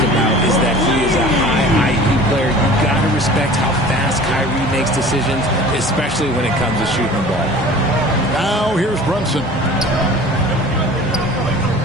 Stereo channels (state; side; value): normal; both; correlation 0.43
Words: about is that he is a high IQ player. You've got to respect how fast Kyrie makes decisions, especially when it comes to shooting the ball. Now here's Brunson.